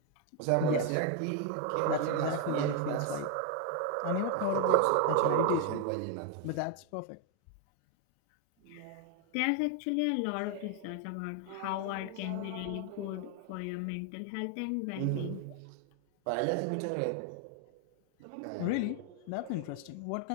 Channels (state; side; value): different; both; correlation 0.01